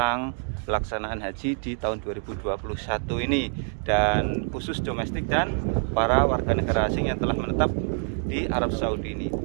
pelaksanaan haji di tahun 2021 ini, dan khusus domestik dan para warga negara asing yang telah menetap di Arab Saudi ini.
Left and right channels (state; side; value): silent; left; 56 dB below the other